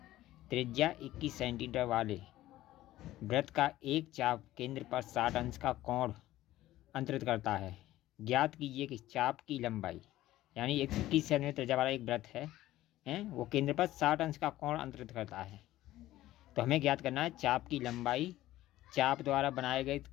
त्रिज्या 21 सेंटीमीटर वाले वृत्त का एक चाप केंद्र पर 60 अंश का कोण अंतरित करता है। ज्ञात कीजिए कि चाप की लंबाई, यानी एक 21 सेंटीमीटर त्रिज्या वाला एक वृत्त है वो केंद्र पर 60 अंश का कोण अंतरित करता है। तो हमें ज्ञात करना है चाप की लंबाई, चाप द्वारा बनाए गए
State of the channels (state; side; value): quieter; right; 15.2 dB